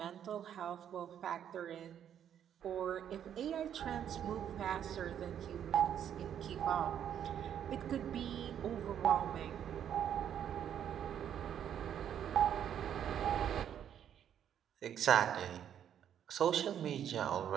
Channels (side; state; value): left; quieter; 9.4 dB